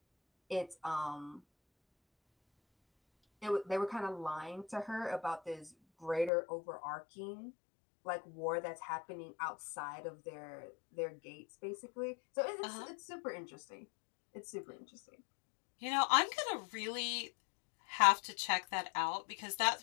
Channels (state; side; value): drops out; right; at 6.3 s